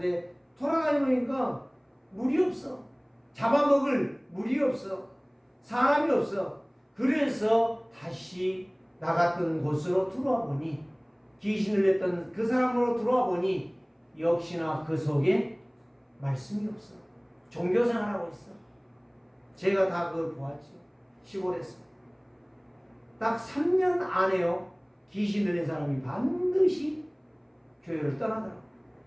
돌아다니니까 물이 없어. 잡아먹을 물이 없어. 사람이 없어. 그래서 다시 나갔던 곳으로 들어와 보니, 귀신을 냈던 그 사람으로 들어와 보니 역시나 그 속에 말씀이 없어. 종교생활하고 있어. 제가 다 그걸 보았죠. 시골에서. 딱 3년 안에요. 귀신 들린 사람이 반드시 교회를 떠나더라고요.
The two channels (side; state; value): both; identical; correlation 1.00